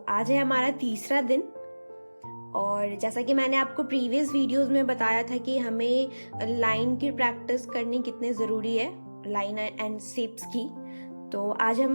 आज है हमारा तीसरा दिन और जैसा कि मैंने आपको प्रीवियस वीडियोस में बताया था कि हमें लाइन की प्रैक्टिस करनी कितनी ज़रूरी है, लाइन एंड शेप्स की। तो आज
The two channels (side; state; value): both; inverted; correlation -1.00